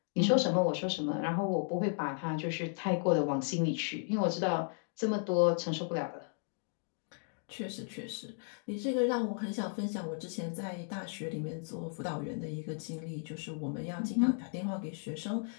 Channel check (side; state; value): right; silent; 55 dB below the other